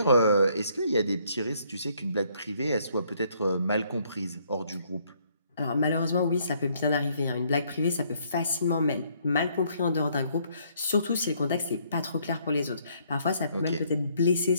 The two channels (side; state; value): both; inverted; correlation -0.67